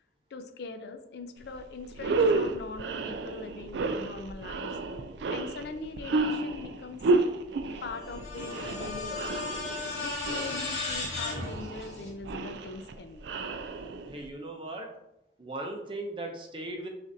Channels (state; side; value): normal; both; correlation 0.20